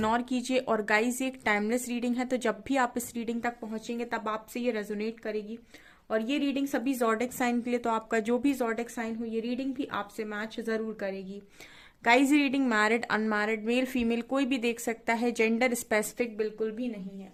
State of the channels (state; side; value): identical; both; correlation 1.00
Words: कीजिए। और गाइस, ये एक टाइमलेस रीडिंग है, तो जब भी आप इस रीडिंग तक पहुंचेंगे तब आपसे ये रेजोनेट करेगी। और ये रीडिंग सभी ज़ोडिक साइन के लिए, तो आपका जो भी ज़ोडिक साइन हो ये रीडिंग भी आपसे मैच जरूर करेगी। गाइस, ये reading married unmarried male female कोई भी देख सकता है, जेंडर स्पेसिफिक बिल्कुल भी नहीं है।